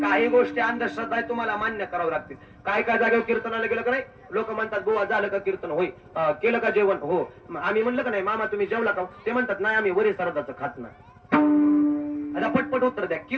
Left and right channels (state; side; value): identical; both; correlation 1.00